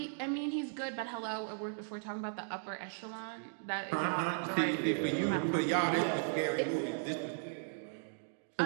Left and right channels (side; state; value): left; silent; digital silence